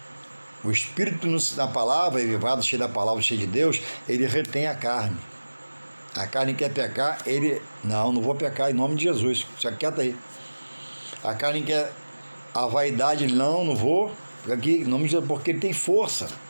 O espírito na palavra, elevado, cheio da palavra, cheio de Deus, ele retém a carne. A carne quer pecar, ele... Não vou pecar em nome de Jesus. Fica quieto aí. A carne quer a vaidade, ele... Não vou. Fica aqui em nome de Jesus, porque ele tem força.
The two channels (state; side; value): inverted; both; correlation -1.00